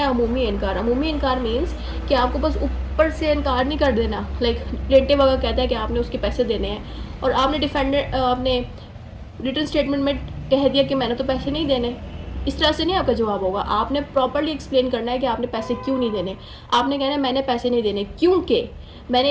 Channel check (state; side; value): identical; both; correlation 1.00